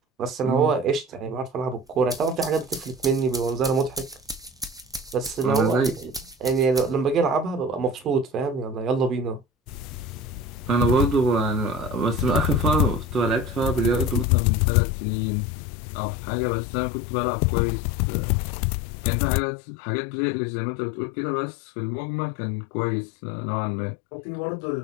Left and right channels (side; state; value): right; drops out; at 14.2 s